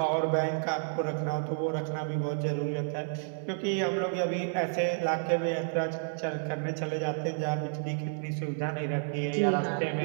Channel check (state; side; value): silent; left; digital silence